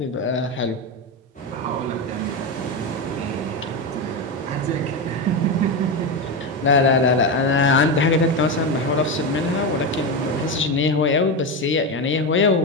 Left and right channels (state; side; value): normal; both; correlation 0.14